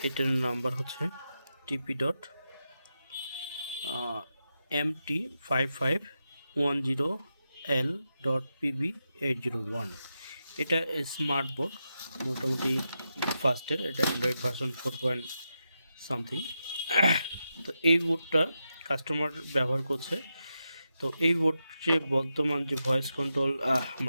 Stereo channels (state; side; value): inverted; both; correlation -0.88